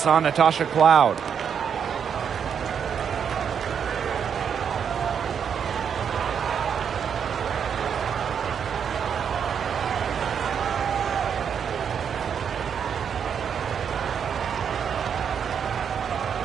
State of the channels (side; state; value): left; quieter; 7.5 dB